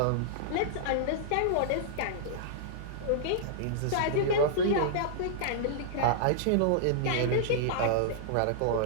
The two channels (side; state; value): both; different; correlation -0.02